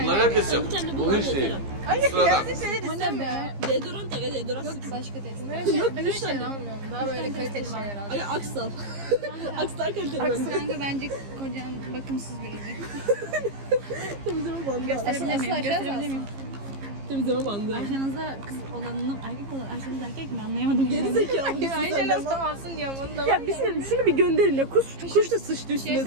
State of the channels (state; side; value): late; left; 15 ms